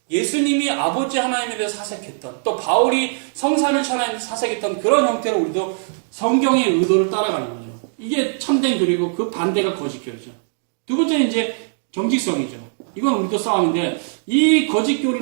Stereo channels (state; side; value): silent; left; digital silence